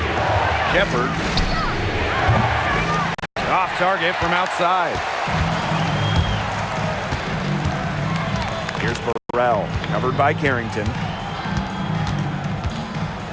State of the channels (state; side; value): identical; both; correlation 1.00